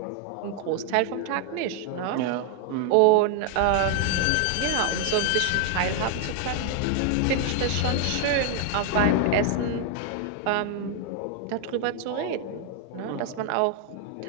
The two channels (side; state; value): both; different; correlation 0.00